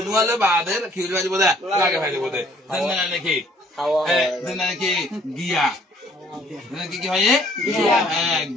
বাদের খিল বাজিব দে লাগে ফেলিব দে দেন নাকি দেন নাকি গিয়া কি কি হয়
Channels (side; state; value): both; normal; correlation 0.60